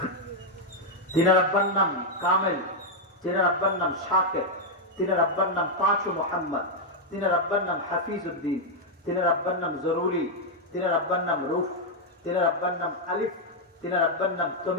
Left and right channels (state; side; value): normal; both; correlation -0.01